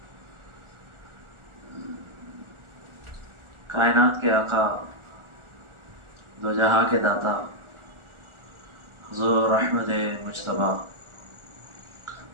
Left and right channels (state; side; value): late; left; 1.4 ms